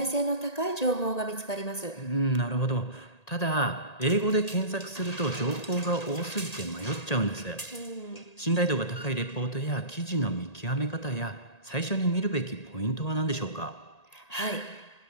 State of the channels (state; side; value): late; right; 1.8 ms